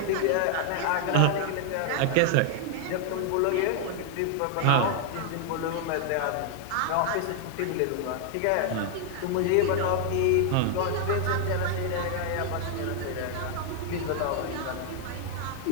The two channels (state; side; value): different; both; correlation 0.00